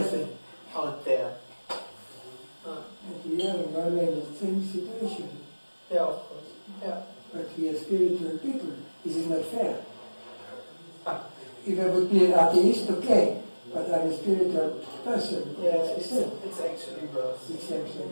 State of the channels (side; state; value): both; inverted; correlation -1.00